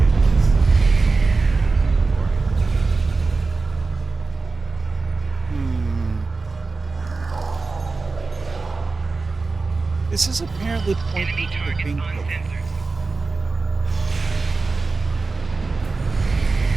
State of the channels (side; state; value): left; quieter; 3.9 dB